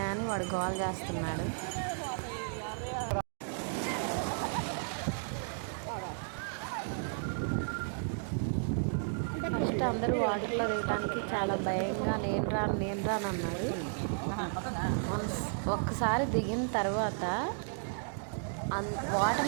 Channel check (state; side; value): silent; left; digital silence